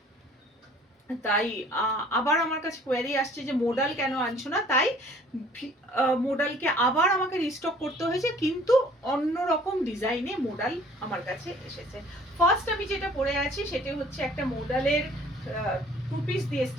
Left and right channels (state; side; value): normal; both; correlation 0.54